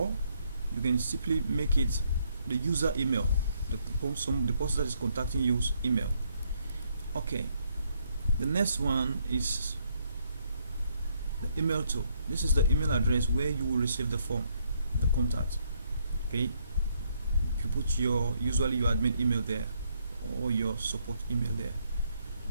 you can simply make it the user email, the person that is contacting you's email. Okay, the next one is the email to. This is the email address where you will receive the form, the contact. Okay, you put usually your admin email there, or your support email there.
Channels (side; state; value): both; inverted; correlation -0.71